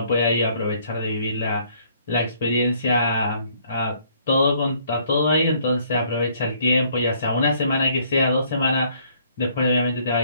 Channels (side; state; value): both; inverted; correlation -0.64